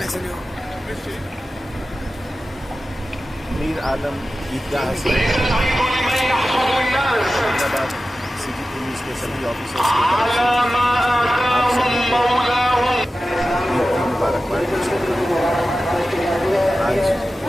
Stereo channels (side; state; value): both; normal; correlation 0.94